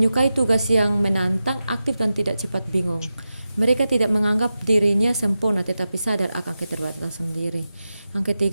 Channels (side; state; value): both; inverted; correlation -0.92